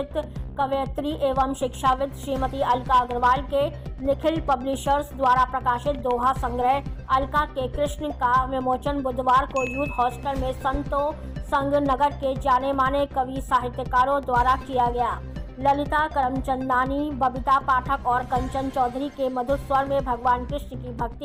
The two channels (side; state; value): both; identical; correlation 1.00